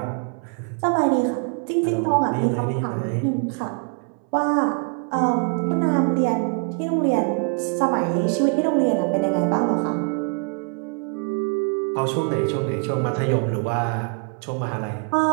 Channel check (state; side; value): quieter; left; 36.4 dB